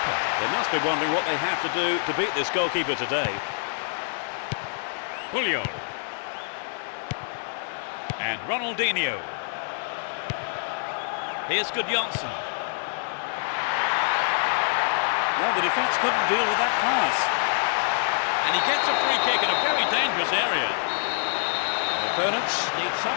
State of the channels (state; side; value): silent; right; 61 dB below the other